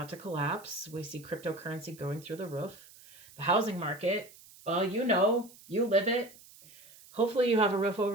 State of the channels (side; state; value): right; noise; hiss, 22 dB below the sound